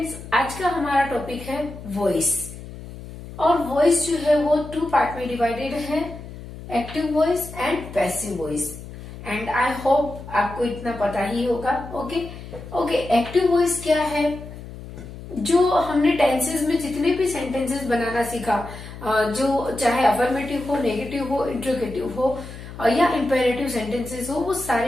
आज का हमारा topic है voice और voice जो है वो टू पार्ट में डिवाइडेड है, active voice and passive voice. And I hope आपको इतना पता ही होगा। ओके, एक्टिव वॉइस क्या है? जो हमने टेंसेस में जितने भी सेंटेंसेस बनाना सीखा, जो चाहे अफर्मेटिव हो, नेगेटिव हो, इंट्रोगेटिव हो या इंपेरेटिव सेंटेंसेस हो, वो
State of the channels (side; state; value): left; noise; hum, 13 dB below the sound